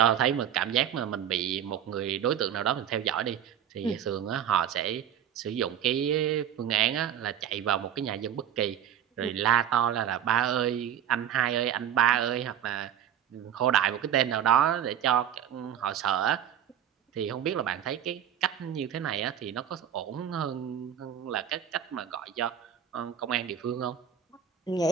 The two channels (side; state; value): left; quieter; 9.6 dB